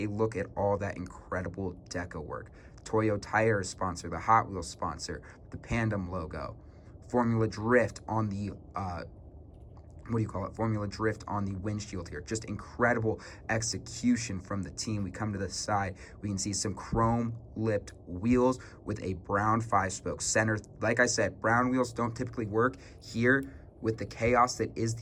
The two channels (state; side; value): identical; both; correlation 1.00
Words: look at all that incredible deco work. Toyo Tire sponsor, the Hot Wheels sponsor, the Pandem logo, Formula Drift on the Formula Drift on the windshield here. Just incredible execution from the team. We come to the side, we can see some chrome lipped wheels with a brown 5-spoke center. Like I said, brown wheels don't typically work here. With the chaos that is